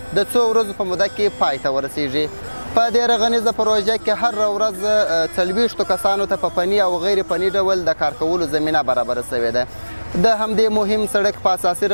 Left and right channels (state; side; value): inverted; both; correlation -1.00